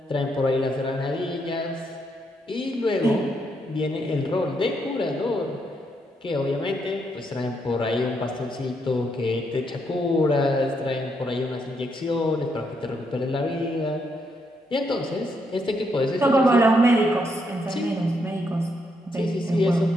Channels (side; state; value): both; normal; correlation 0.77